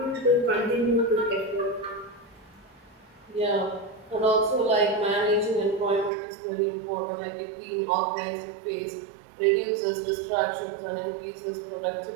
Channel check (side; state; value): left; drops out; at 6.1 s